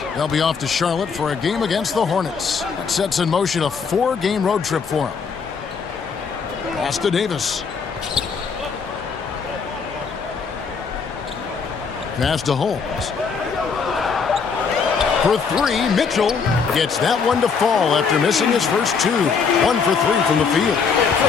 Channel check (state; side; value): quieter; right; 5.7 dB